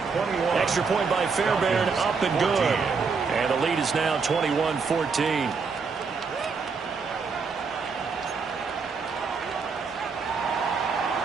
Extra point by Fairbairn, up and good. And the lead is now 21-14.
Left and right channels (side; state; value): left; quieter; 5.1 dB